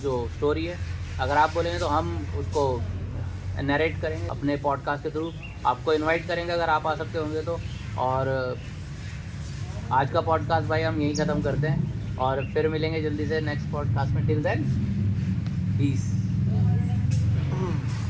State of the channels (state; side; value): identical; both; correlation 1.00